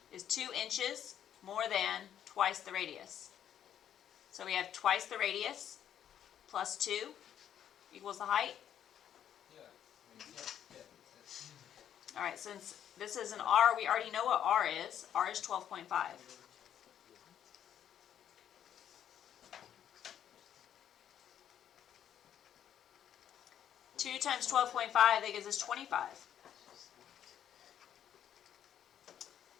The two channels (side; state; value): right; quieter; 9.9 dB